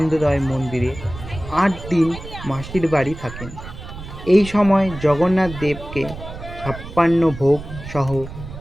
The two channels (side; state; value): right; noise; rumble, 12 dB below the sound